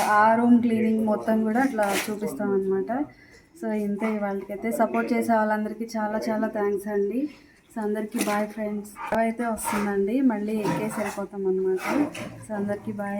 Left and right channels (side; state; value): both; identical; correlation 1.00